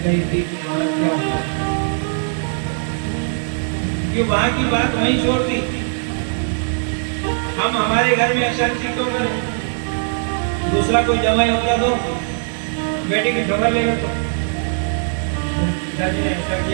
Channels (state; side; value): silent; left; digital silence